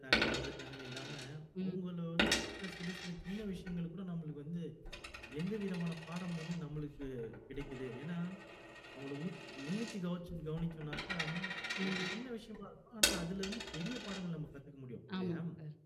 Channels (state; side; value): identical; both; correlation 1.00